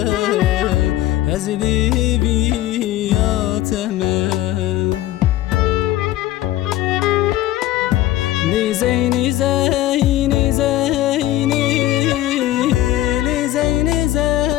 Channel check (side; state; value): right; quieter; 14.6 dB